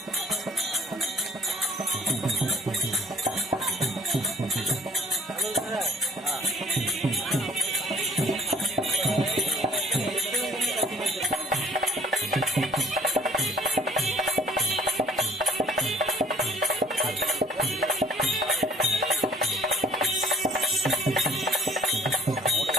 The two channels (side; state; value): both; normal; correlation 0.56